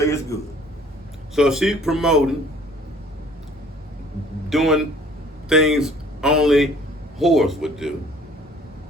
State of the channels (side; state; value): both; normal; correlation 0.54